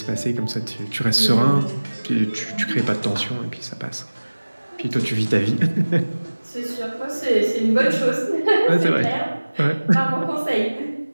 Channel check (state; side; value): inverted; both; correlation -1.00